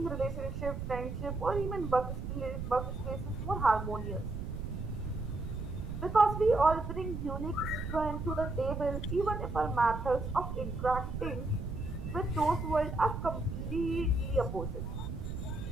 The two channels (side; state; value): right; noise; rumble, 5 dB below the sound